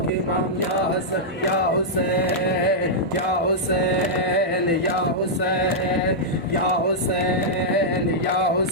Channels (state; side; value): normal; both; correlation -0.07